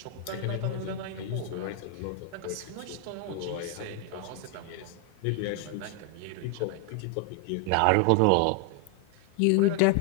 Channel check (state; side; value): different; both; correlation 0.00